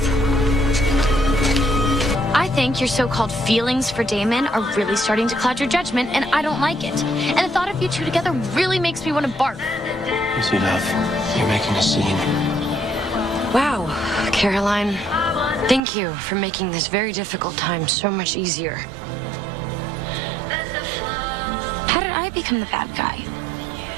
I think your so-called feelings for Damon are really starting to cloud your judgment, and I don't like it. And the thought of you two together really makes me want to barf. Easy, love. You're making a scene. Wow, Caroline. Thank you for making this very difficult time so much easier. How did I become the bad guy?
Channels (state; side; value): drops out; left; at 15.8 s